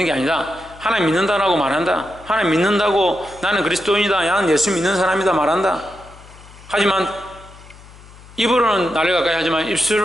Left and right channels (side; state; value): left; noise; hum, 21 dB below the sound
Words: 게 아니라 하나님 믿는다라고 말한다. 하나님 믿는다고 나는 그리스도인이다, 나는 예수 믿는 사람이다 말한다. 하지만 입으로는 나를 가까이 하지만